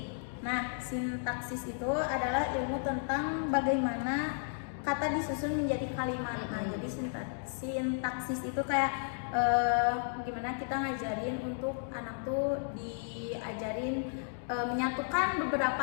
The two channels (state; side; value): silent; right; digital silence